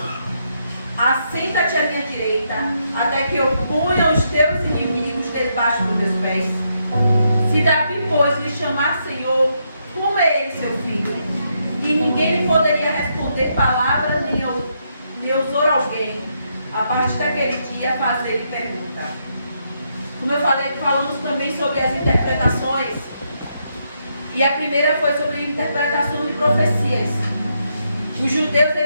assenta-te à minha direita, até que eu ponha os teus inimigos debaixo dos meus pés. Se Davi, pois, lhe chamar Senhor, como é ele seu filho? E ninguém lhe poderia responder palavra, nem ousou alguém, a partir daquele dia, fazer-lhe pergunta. Como eu falei, falamos também sobre as interpretações. E a primeira foi sobre a interpretação de profecias. Os judeus,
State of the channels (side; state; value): both; inverted; correlation -0.78